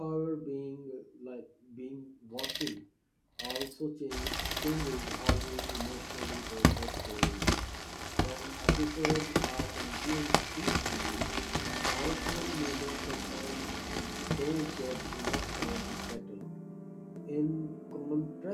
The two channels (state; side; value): identical; both; correlation 1.00